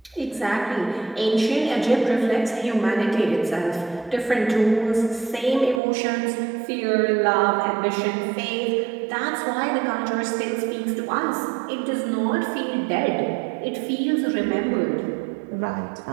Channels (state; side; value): drops out; left; at 5.8 s